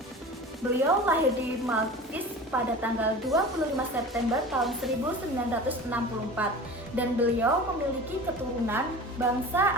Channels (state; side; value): normal; both; correlation 0.36